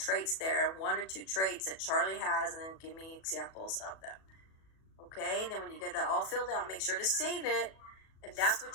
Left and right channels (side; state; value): right; late; 37 ms